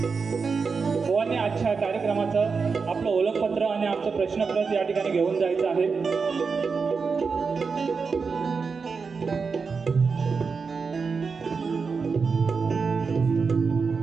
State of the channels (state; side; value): quieter; left; 5.1 dB